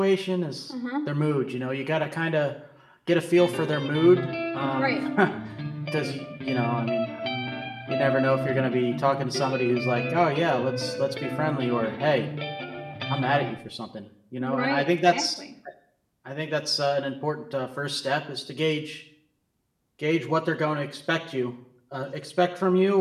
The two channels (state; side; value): identical; both; correlation 1.00